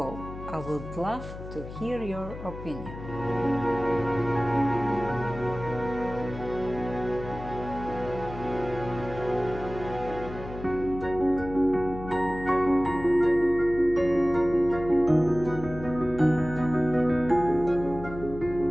I would love to hear your opinion.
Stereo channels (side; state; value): left; noise; hum, 12 dB below the sound